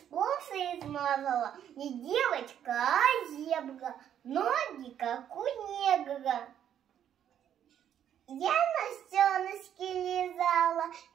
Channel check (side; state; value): left; quieter; 9.8 dB